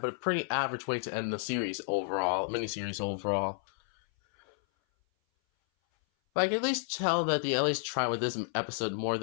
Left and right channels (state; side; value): silent; right; 57 dB below the other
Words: but a pretty average way to end the series overall, miniseries overall. But I can at least tell that they at least try with this episode more